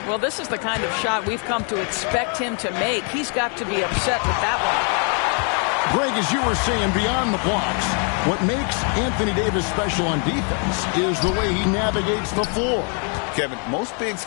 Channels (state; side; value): quieter; right; 39.9 dB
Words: Well, this is the kind of shot we've come to expect him to make. He's got to be upset with that one. Greg, as you were saying, beyond the blocks, what makes Anthony Davis special on defense is the way he navigates the floor. Kevin, most bigs